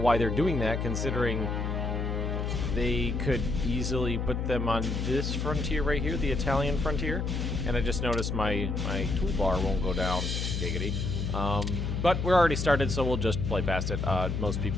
they're doing that, considering they could easily put them on this frontier right here, the Italian frontier. And I just noticed my toolbar won't go down, giggity. But we're already started, so we'll just play past it. Most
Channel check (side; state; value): left; noise; hum, 1 dB below the sound